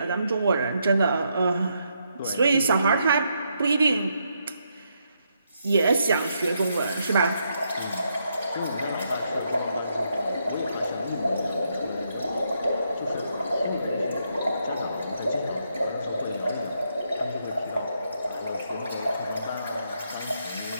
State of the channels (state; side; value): inverted; both; correlation -0.78